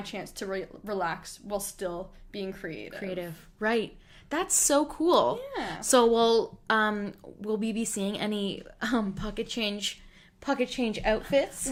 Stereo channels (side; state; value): both; identical; correlation 1.00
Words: chance to relax while still being creative. Right. That's so cool. Yeah. So will we be seeing any pocket change outfits?